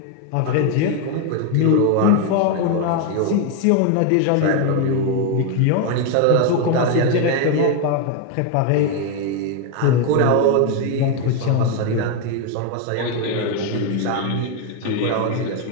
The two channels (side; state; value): both; different; correlation 0.01